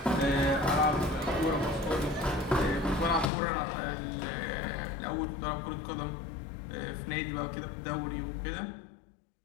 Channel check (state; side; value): drops out; right; at 3.3 s